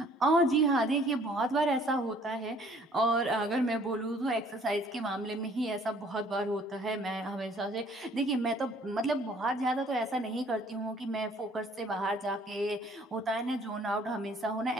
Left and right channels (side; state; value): both; normal; correlation 0.58